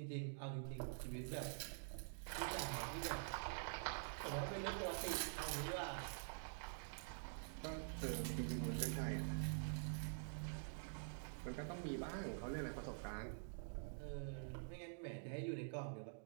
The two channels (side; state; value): left; silent; digital silence